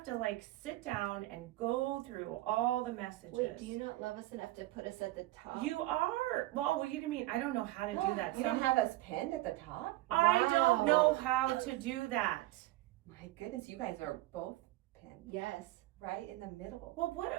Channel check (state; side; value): quieter; left; 17.6 dB